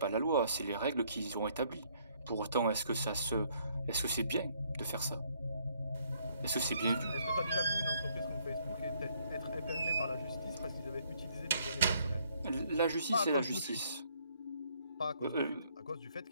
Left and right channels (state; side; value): inverted; both; correlation -0.67